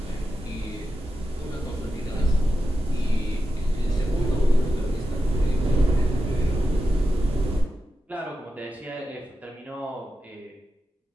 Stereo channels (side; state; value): both; normal; correlation 0.91